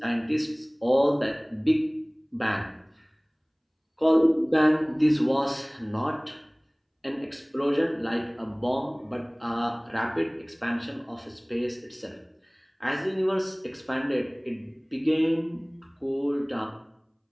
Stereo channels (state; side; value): identical; both; correlation 1.00